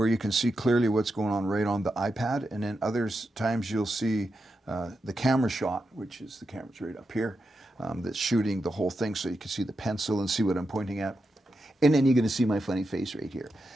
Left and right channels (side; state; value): both; normal; correlation 0.87